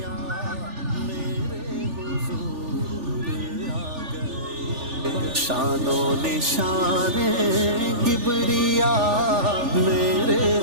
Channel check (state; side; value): late; left; 3.4 ms